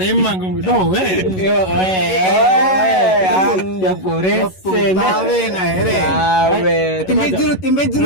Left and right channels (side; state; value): right; late; 11 ms